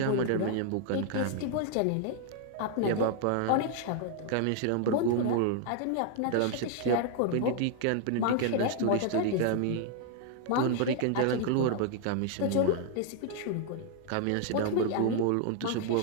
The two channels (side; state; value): both; different; correlation 0.00